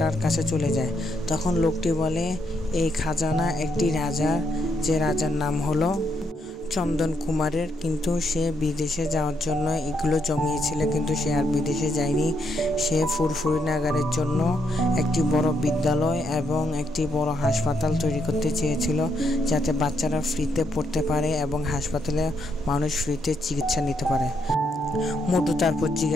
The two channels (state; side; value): normal; both; correlation 0.77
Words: কাছে চলে যায়। তখন লোকটি বলে এই খাজানা একটি রাজার, যে রাজার নাম হলো চন্দন কুমারের, কিন্তু সে বিদেশে যাওয়ার জন্য এগুলো জমিয়েছিল, কিন্তু সে আর বিদেশে যায়নি। সে ফুরফুরি নাগারের জন্য একটি বড় বিদ্যালয় এবং একটি বড় হাসপাতাল তৈরি করতে চেয়েছিল, যাতে বাচ্চারা ফ্রিতে পড়তে পারে এবং হাসপাতালে মানুষ ফ্রিতে চিকিৎসা নিতে পারে। মোটু তারপর